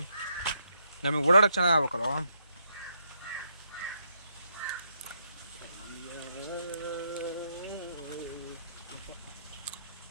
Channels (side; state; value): both; inverted; correlation -0.78